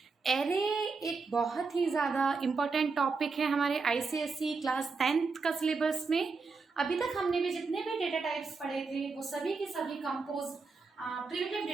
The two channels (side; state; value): left; quieter; 4.5 dB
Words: एरे एक बहुत ही ज़्यादा इम्पोर्टेंट टॉपिक है हमारे आईसीएसई क्लास 10th का सिलेबस में। अभी तक हमने भी जितने भी डेटा टाइप्स पढ़े थे वो सभी के सभी कंपोज प्रिमिटिव